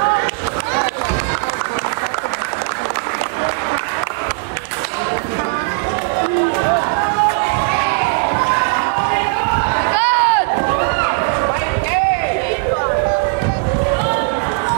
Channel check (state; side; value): quieter; left; 35.1 dB